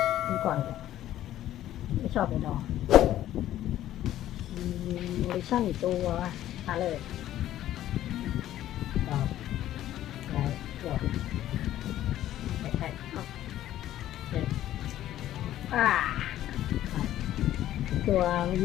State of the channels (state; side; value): quieter; right; 12.9 dB